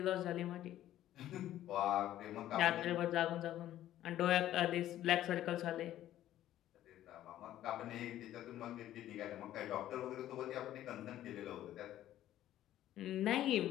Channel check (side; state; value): right; quieter; 12.9 dB